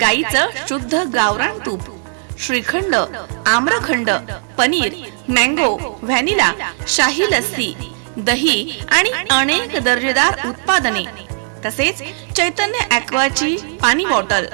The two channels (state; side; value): silent; left; digital silence